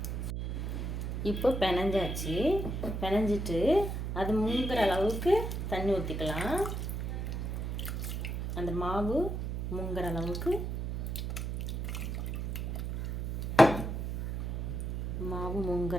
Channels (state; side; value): noise; right; hum, 3 dB below the sound